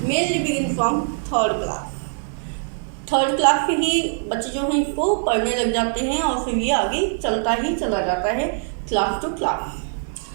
mainly begins from third class. Third class से ही बच्चे जो हैं इसको पढ़ने लग जाते हैं और फिर ये आगे चलता ही चला जाता है class to class.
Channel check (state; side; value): silent; left; digital silence